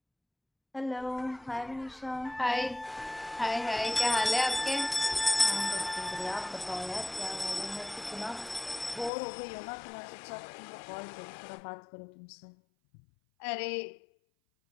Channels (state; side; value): drops out; right; at 9.1 s